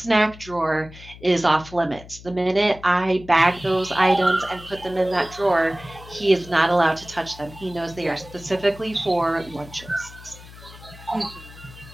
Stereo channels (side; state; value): left; noise; hum, 18 dB below the sound